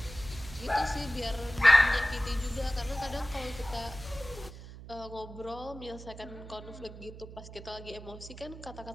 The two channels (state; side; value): noise; right; hum, 14 dB below the sound